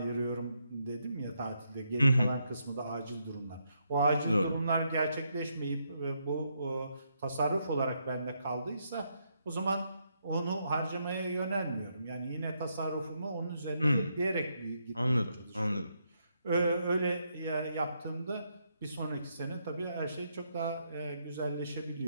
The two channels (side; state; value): both; inverted; correlation -0.78